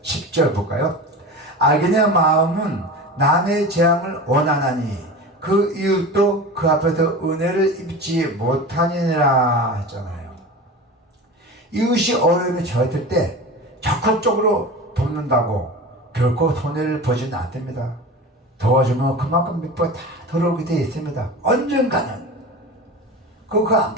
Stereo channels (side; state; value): both; normal; correlation 0.31